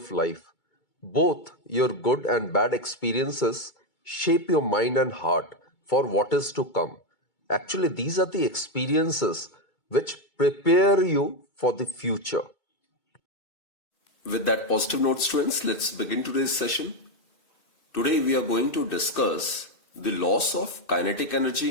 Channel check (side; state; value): right; late; 2.2 ms